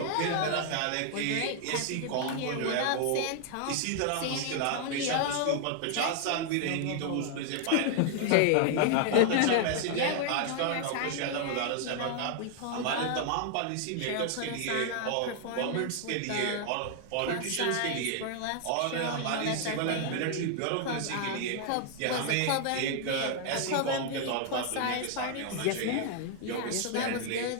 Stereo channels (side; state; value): both; different; correlation 0.00